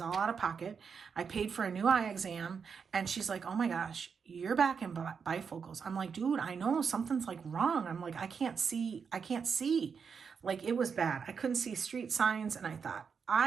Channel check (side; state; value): left; quieter; 6.1 dB